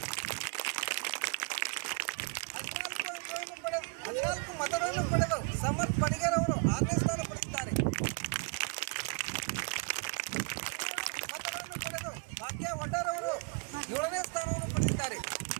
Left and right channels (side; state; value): left; quieter; 34.4 dB